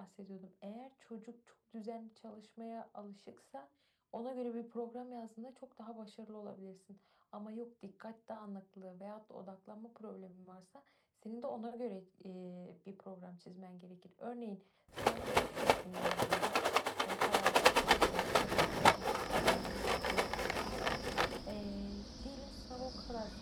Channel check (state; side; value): identical; both; correlation 1.00